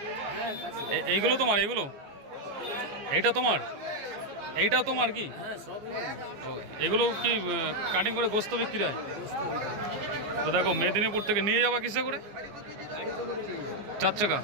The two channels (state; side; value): late; left; 14 ms